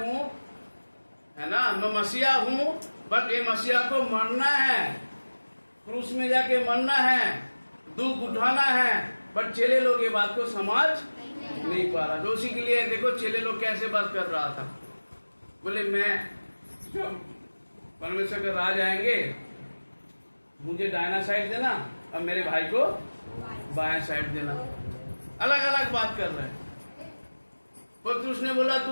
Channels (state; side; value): inverted; both; correlation -1.00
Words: है ना, मैं मसीहा हूं, बट ये मसीहा को मरना है, क्रूस में जाके मरना है, दुख उठाना है। बट चेले लोग ये बात को समझ नहीं पा रहा। तो उसी के लिए देखो चेले लोग कैसे बात कर रहा था, बोले मैं जब परमेश्वर के राज आएंगे मुझे दाहिना साइड देना और मेरे भाई को बाएं साइड देना। अलग अलग बात कर रहे हैं। पतरस ने बोला